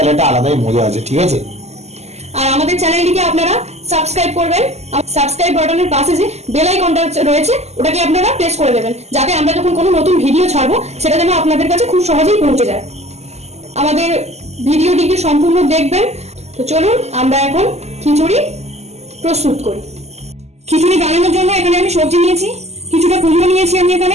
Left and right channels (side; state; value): left; late; 0.32 ms